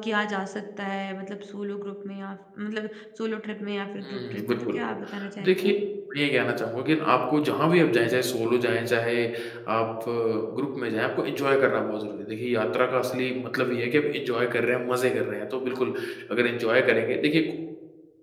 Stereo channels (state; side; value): identical; both; correlation 1.00